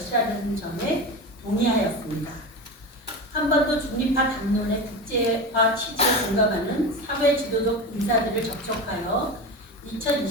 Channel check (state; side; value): normal; both; correlation 0.25